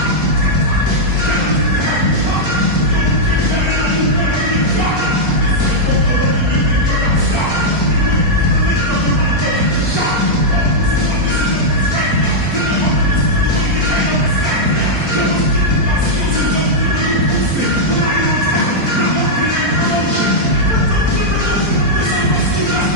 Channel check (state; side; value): late; left; 4.4 ms